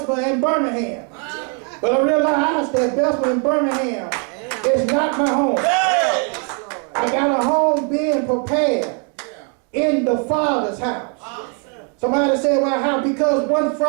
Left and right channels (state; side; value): quieter; left; 39.4 dB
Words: and Birmingham, but I realized that Bessemer and Birmingham is not my home. Hey. I got a home being prepared in the Father's house. Somebody said, well, how? Because one